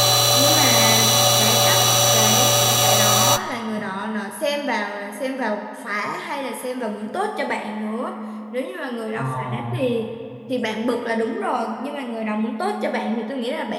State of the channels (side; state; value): both; identical; correlation 1.00